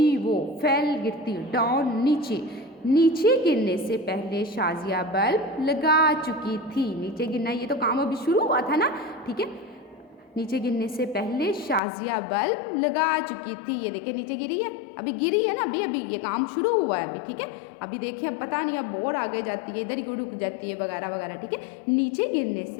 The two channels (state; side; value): drops out; right; at 11.8 s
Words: वो, फेल गिरती, डाउन नीचे, नीचे गिरने से पहले शाजिया बल्ब लगा चुकी थी, नीचे गिरना ये तो काम अभी शुरू हुआ था ना, ठीक है। नीचे गिरने से पहले शाजिया बल्ब लगा चुकी थी, ये देखिए नीचे गिरी है, अभी गिरी है ना, अभी ये काम शुरू हुआ है अभी, ठीक है। अभी देखिए अब पता नहीं, अब बोर्ड आगे जाती है, इधर ही रुक जाती है वगैरह वगैरह, ठीक है। नीचे गिरने